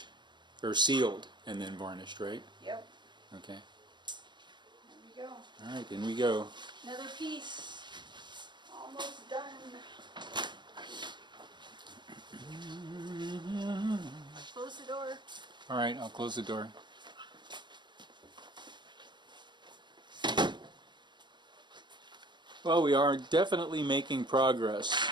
or sealed, and then varnished, right? Yep. Okay. There we go. All right, in we go. Another piece. Almost done. Close the door. All right, I'll close the door. Well, we are definitely making progress.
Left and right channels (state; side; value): late; left; 0.22 ms